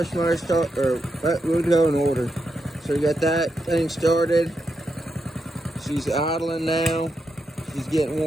motor start, or we'll go in order. So you got that thing started. She's idling now. She's getting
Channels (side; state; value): both; normal; correlation 0.84